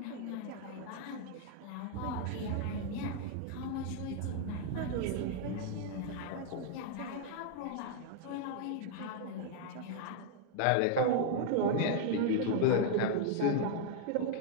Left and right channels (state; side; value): different; both; correlation 0.00